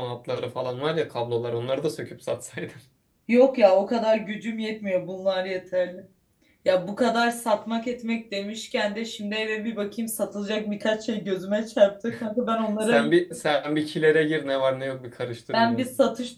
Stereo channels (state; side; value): identical; both; correlation 1.00